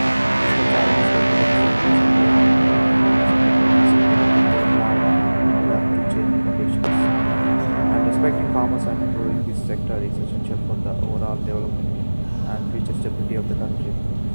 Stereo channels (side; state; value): both; inverted; correlation -1.00